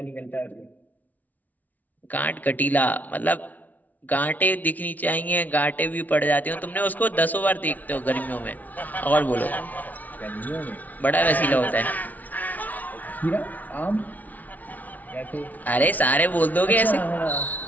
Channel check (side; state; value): right; late; 0.076 ms